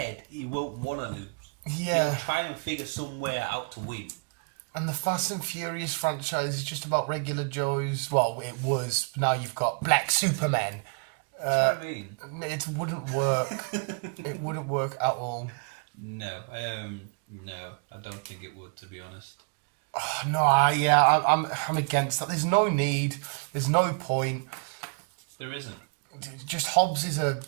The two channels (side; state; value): left; quieter; 36.9 dB